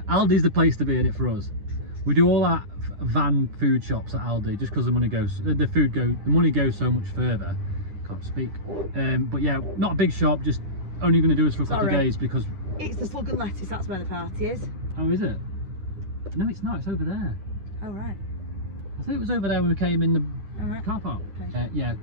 the place to be in it for us. We do all that van food shops at Aldi just because the money goes so much further. Can't speak. But yeah, not a big shop, just only going to do us for a couple of days because it's the Slug and Lettuce. That's where the party is. Oh, is it? No, it's not. It's over there. Oh, right. I thought it was over there when we came in the car park. Okay. Yeah,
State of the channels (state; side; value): late; left; 10 ms